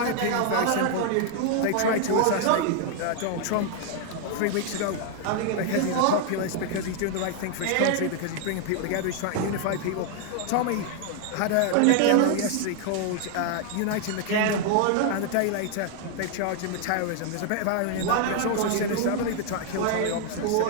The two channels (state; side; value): different; both; correlation 0.00